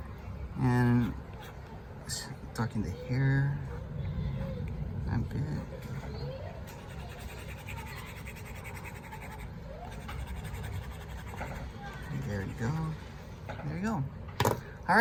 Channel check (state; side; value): identical; both; correlation 1.00